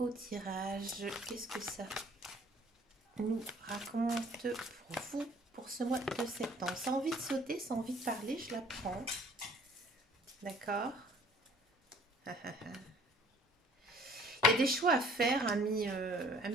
tirage qu'est-ce que ça nous raconte pour vous pour ce mois de septembre. Sans envie de sauter, sans envie de parler, je la prends. D'accord. Il y a des choix à faire, ami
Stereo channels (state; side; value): normal; both; correlation 0.54